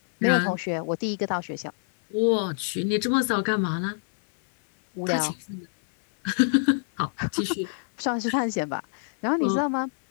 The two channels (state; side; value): silent; right; digital silence